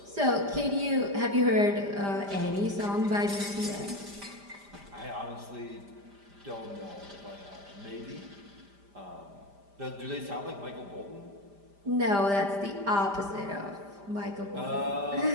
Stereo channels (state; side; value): late; left; 5.0 ms